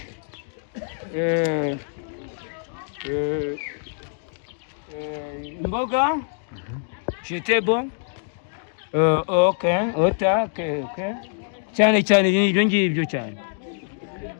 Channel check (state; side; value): silent; right; digital silence